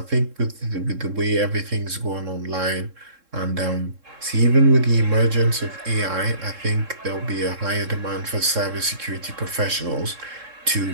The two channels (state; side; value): late; left; 3.7 ms